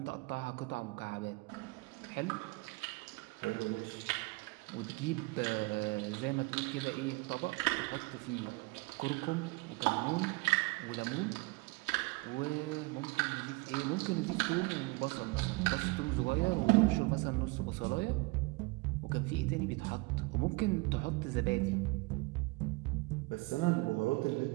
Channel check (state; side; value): quieter; left; 25.8 dB